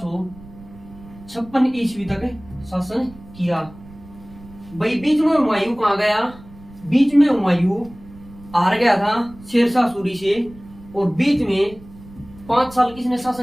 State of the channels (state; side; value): noise; right; rumble, 20 dB below the sound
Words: ईस्वी तक शासन किया भाई। बीच में हुमायूं कहाँ गया? बीच में हुमायूं हार गया था शेरशाह सूरी से। और बीच में 5 साल किसने